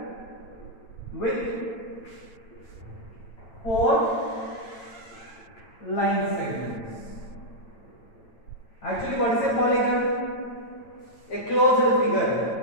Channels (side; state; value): right; late; 8.9 ms